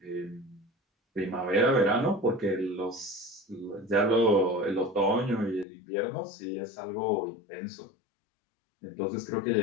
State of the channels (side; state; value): right; drops out; at 5.7 s